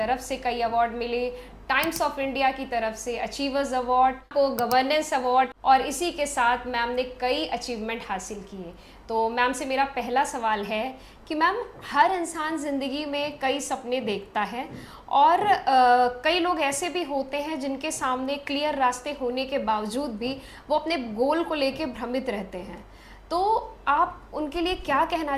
से कई अवार्ड मिले, टाइम्स ऑफ इंडिया की तरफ से अचीवर्स अवार्ड, को गवर्नेंस अवार्ड, और इसी के साथ मैम ने कई अचीवमेंट हासिल किए। तो मैम से मेरा पहला सवाल है कि मैम, हर इंसान ज़िंदगी में कई सपने देखता है और कई लोग ऐसे भी होते हैं जिनके सामने क्लियर रास्ते होने के बावजूद भी वो अपने गोल को लेके भ्रमित रहते हैं। तो आप उनके लिए क्या कहना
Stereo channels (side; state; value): both; identical; correlation 1.00